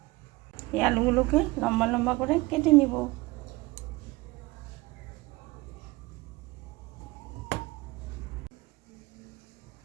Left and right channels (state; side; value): quieter; left; 21.9 dB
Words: এই আলুগুলোকে লম্বা লম্বা করে কেটে নিব।